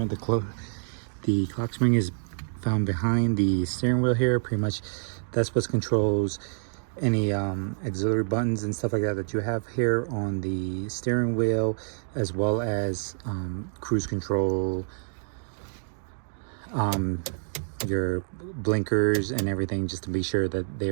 the clock spring is found behind the steering wheel here. Pretty much that's what controls any auxiliary buttons and stuff like that that you have here on the steering wheel, as well as cruise control, your blinkers and everything, just to be sure that they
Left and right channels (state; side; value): silent; left; digital silence